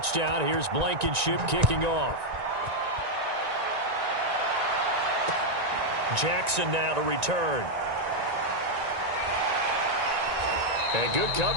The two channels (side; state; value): left; late; 1.9 ms